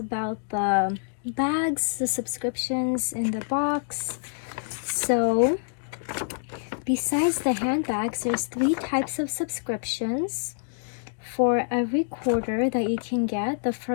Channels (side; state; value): right; silent; digital silence